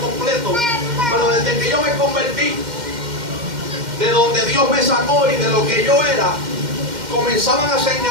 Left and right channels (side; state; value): left; late; 2.1 ms